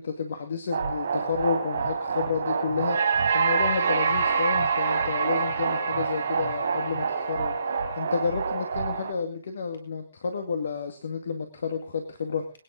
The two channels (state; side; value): inverted; both; correlation -0.74